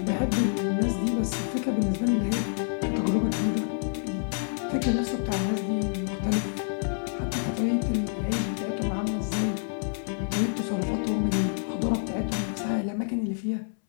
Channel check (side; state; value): right; silent; 60 dB below the other